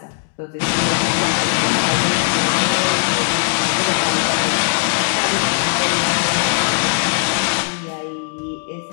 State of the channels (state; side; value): silent; right; digital silence